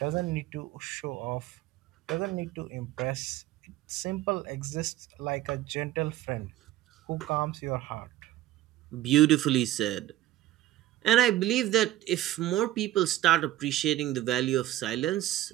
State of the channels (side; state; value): left; quieter; 14.5 dB